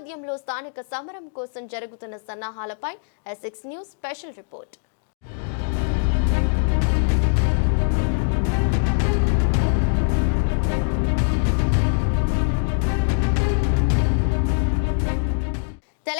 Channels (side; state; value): right; silent; 64 dB below the other